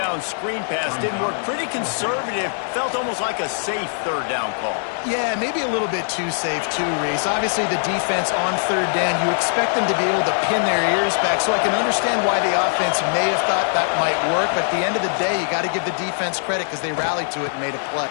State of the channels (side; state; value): right; silent; 65 dB below the other